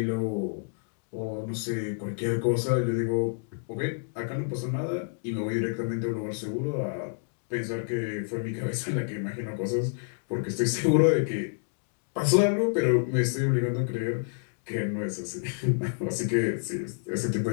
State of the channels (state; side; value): silent; right; digital silence